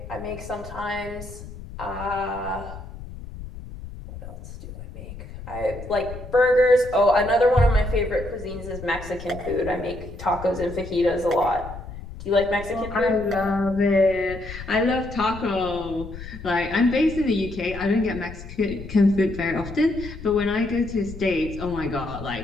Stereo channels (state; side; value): noise; left; rumble, 13 dB below the sound